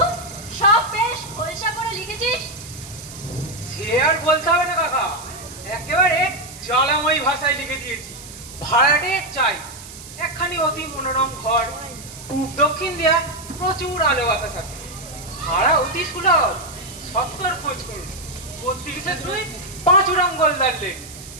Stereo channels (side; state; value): right; noise; hiss, 15 dB below the sound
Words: সব বেশ খোলসা করে লিখেছিস? সে আর বলতে হবে না কাকা, একেবারে জ্বালাময়ী ভাষায় লিখে দিয়েছি। ভাড়াটে চাই একখানি অতি মনোরম ঘর, পূব দক্ষিণ দিয়া প্রচুর আলো বাতাস আছে, ভাড়া অতি সুলভ, 70 খোঁজ করুন, 32-5 গোলদার লেন।